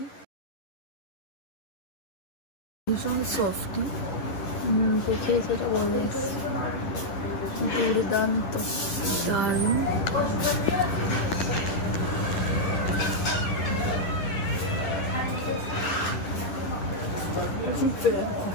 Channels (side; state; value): right; late; 11 ms